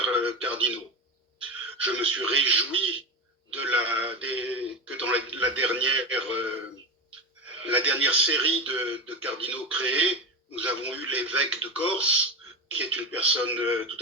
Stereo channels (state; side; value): normal; both; correlation 0.20